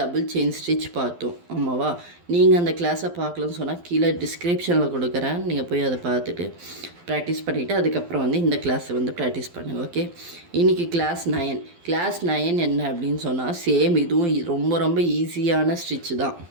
செயின் ஸ்டிச் பார்த்தோம், ஆமாவா? நீங்கள் அந்த கிளாஸை பார்க்கலன்னு சொன்னால் கீழே டிஸ்கிரிப்ஷனில் கொடுக்குறேன், நீங்கள் போய் அதை பார்த்துட்டு ப்ராக்டிஸ் பண்ணிவிட்டு அதுக்கப்புறம் இந்த கிளாஸை ப்ராக்டிஸ் பண்ணுங்கள். ஓகே, இன்றைக்கி கிளாஸ் 9 என்ன அப்படின்னு சொன்னால் சேம் இதுவும் ரொம்ப ரொம்ப ஈஸியான ஸ்டிச் தான்.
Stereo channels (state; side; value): late; left; 12 ms